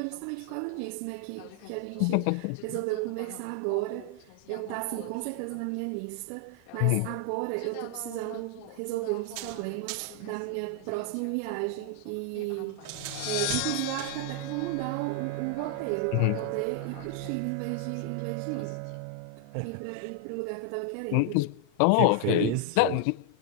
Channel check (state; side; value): different; both; correlation 0.00